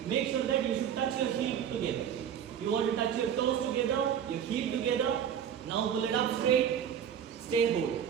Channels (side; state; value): left; quieter; 8.8 dB